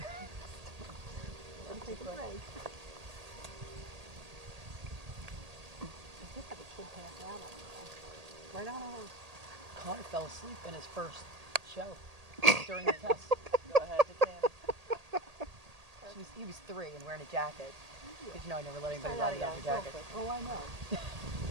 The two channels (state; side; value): late; left; 1.8 ms